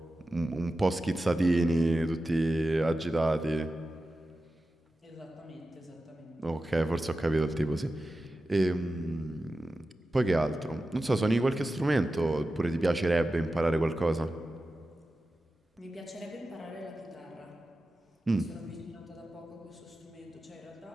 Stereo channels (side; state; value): both; normal; correlation 0.93